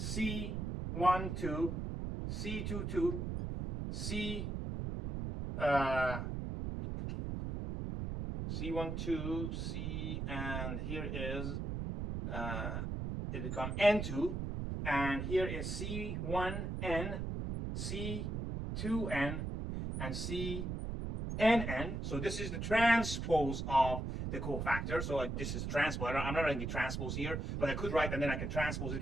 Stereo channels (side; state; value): right; noise; rumble, 3 dB below the sound